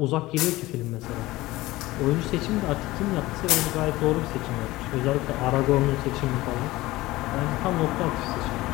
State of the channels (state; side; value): quieter; right; 18.6 dB